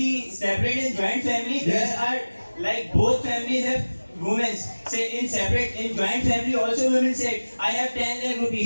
separate and joint family, there are like both families have women. Say in separate, in joint family also women said, I have 10 lakh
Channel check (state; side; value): inverted; both; correlation -1.00